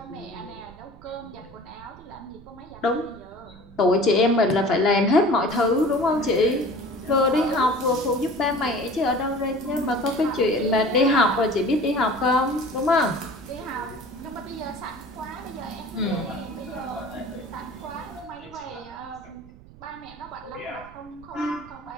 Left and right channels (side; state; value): right; noise; rumble, 21 dB below the sound